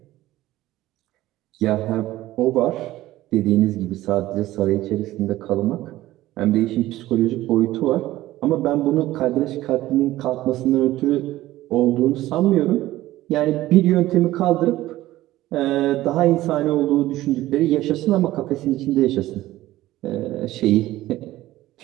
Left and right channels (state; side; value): quieter; left; 15.9 dB